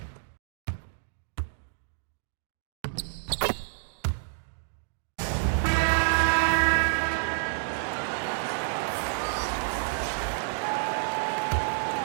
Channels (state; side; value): silent; left; digital silence